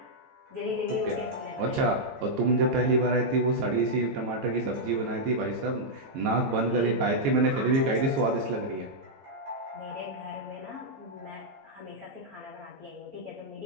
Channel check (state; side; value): late; left; 14 ms